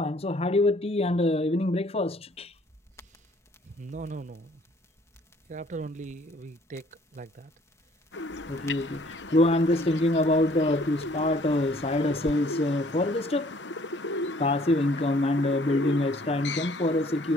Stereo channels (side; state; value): both; normal; correlation 0.59